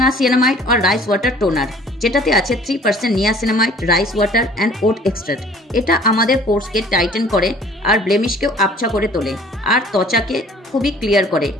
আর রাইস ওয়াটার টোনার, যেটাতে আছে 3% niacinamide, rice water and oat extract. এটা আমাদের পোর্সকে টাইটেন করে আর ব্লেমিশকেও আবছা করে তোলে আর ত্বচাকে খুবই ক্লিয়ার করে।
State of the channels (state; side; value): normal; both; correlation 0.52